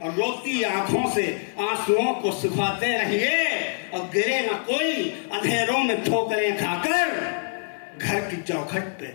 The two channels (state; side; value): silent; right; digital silence